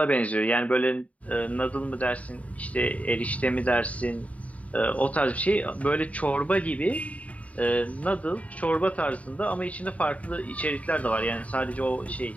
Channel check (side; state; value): right; late; 0.068 ms